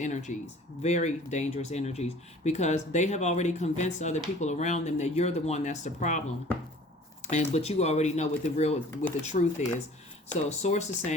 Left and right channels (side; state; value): both; normal; correlation 0.48